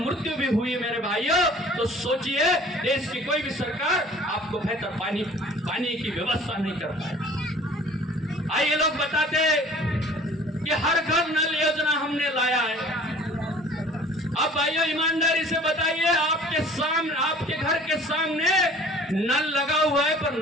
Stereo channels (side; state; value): both; normal; correlation 0.49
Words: भी हुई मेरे भाइयों। तो सोचिए, देश की कोई भी सरकार आपको बेहतर पानी की व्यवस्था नहीं कर पाए। आइए लोग बताते कि हर घर नल योजना हमने लाया है। अब भाइयों ईमानदारी से बताइए, आपके घर के सामने नल लगा हुआ है पर